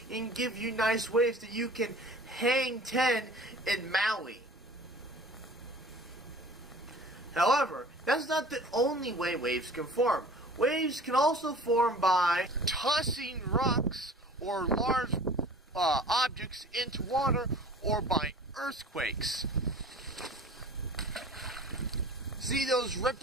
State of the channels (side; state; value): both; normal; correlation 0.44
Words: and give you nice waves that you can hang 10 in Maui. However, that's not the only way waves can form. Waves can also form by tossing rocks or large objects into water, or by earthquakes. See those